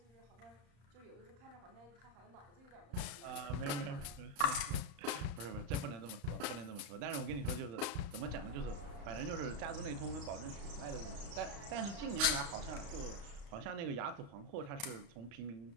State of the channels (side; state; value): left; late; 35 ms